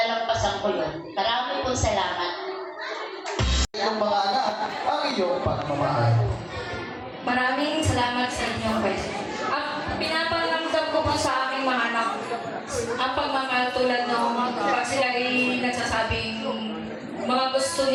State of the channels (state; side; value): identical; both; correlation 1.00